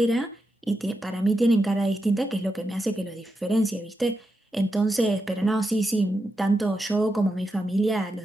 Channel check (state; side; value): normal; both; correlation 0.87